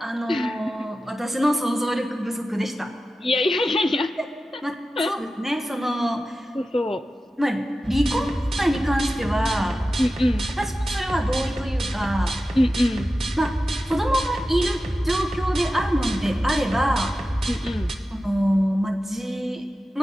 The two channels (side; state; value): both; normal; correlation 0.94